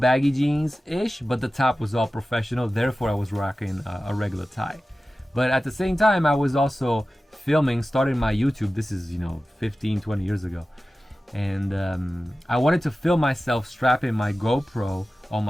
baggy jeans-ish, but the top was all professional, therefore I was rocking a regular tie. But at the same time, I was also starting my YouTube. This is 15-20 years ago, and I wanted to film myself strapping my GoPro on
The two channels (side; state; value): both; normal; correlation 0.95